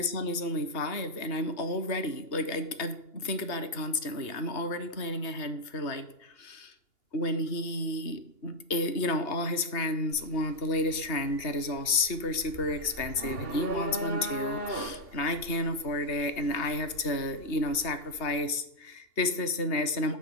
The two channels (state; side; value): late; right; 2.8 ms